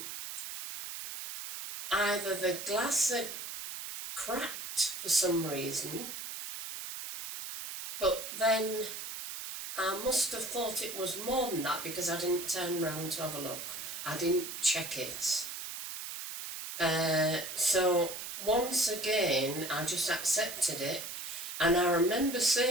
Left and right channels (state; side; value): noise; right; hiss, 7 dB below the sound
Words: either the glass had cracked for some reason, but then I must have thought it was more than that because I didn't turn round to have a look. I didn't check it. So once again, I just accepted it, and I remember